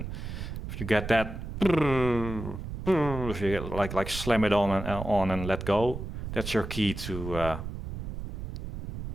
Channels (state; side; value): noise; right; rumble, 7 dB below the sound